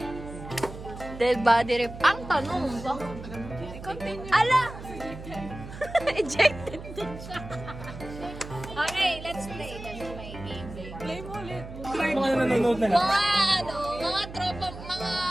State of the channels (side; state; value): right; noise; hum, 12 dB below the sound